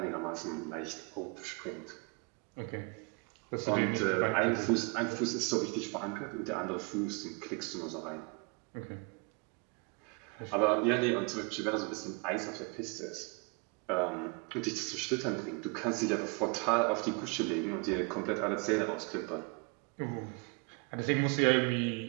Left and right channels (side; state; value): left; quieter; 32.7 dB